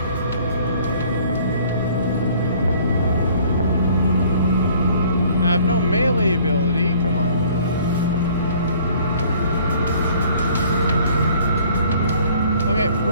I have no melee ability. Come on. Okay,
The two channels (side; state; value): both; inverted; correlation -0.56